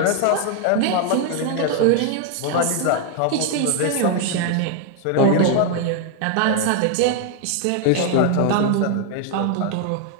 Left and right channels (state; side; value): different; both; correlation 0.00